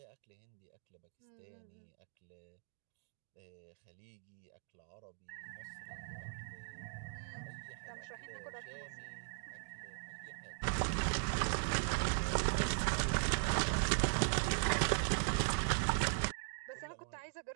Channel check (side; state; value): left; silent; digital silence